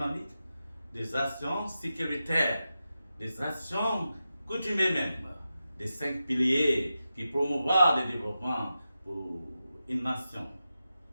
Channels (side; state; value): both; inverted; correlation -0.91